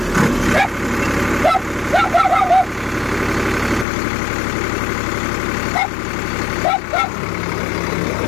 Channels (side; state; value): right; drops out; at 3.9 s